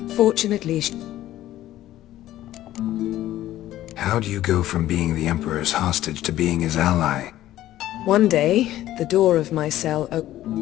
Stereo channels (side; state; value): right; quieter; 14.0 dB